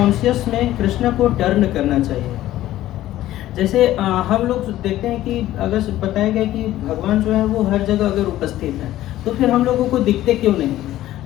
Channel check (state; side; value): quieter; right; 14.3 dB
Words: में कृष्ण को टर्न करना चाहिए। जैसे हम लोग देखते हैं कि अगर बताया गया कि भगवान जो है वो हर जगह अगर उपस्थित है, तो फिर हम लोगों को दिखते क्यों नहीं है?